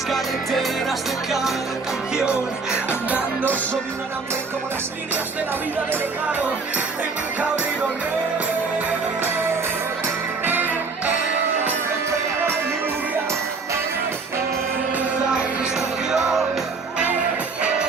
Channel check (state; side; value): quieter; left; 4.4 dB